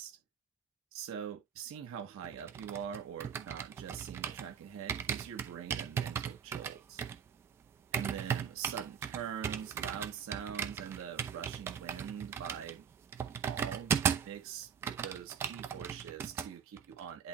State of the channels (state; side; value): quieter; left; 7.7 dB